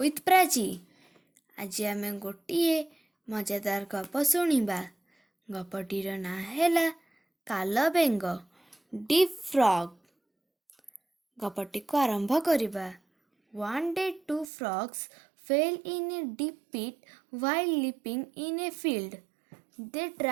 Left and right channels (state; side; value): drops out; left; at 14.5 s